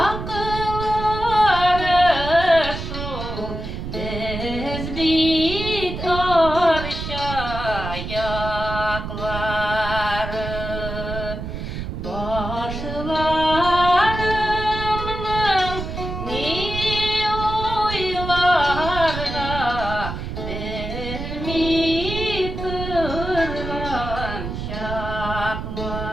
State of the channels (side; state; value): right; noise; rumble, 6 dB below the sound